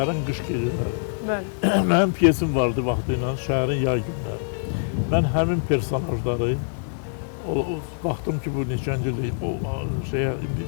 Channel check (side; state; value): right; silent; digital silence